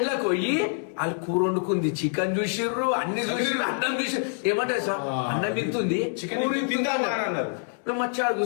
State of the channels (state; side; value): silent; right; 61 dB below the other